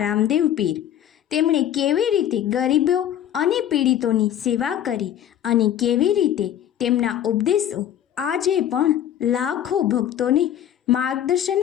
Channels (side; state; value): right; quieter; 10.7 dB